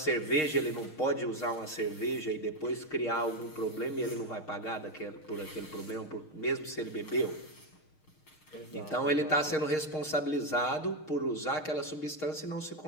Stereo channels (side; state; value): right; late; 6.5 ms